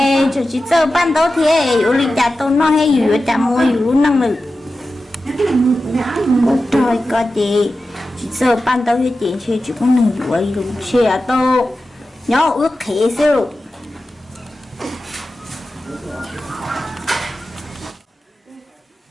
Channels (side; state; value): both; normal; correlation 0.93